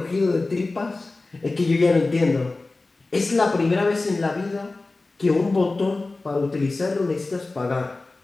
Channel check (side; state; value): right; quieter; 3.3 dB